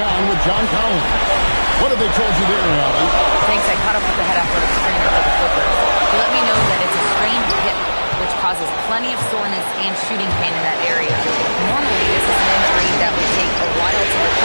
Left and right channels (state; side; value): inverted; both; correlation -1.00